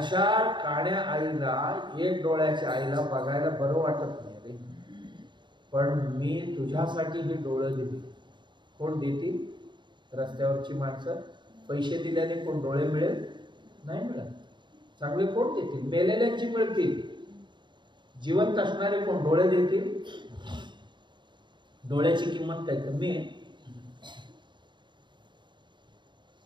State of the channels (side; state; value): left; late; 0.22 ms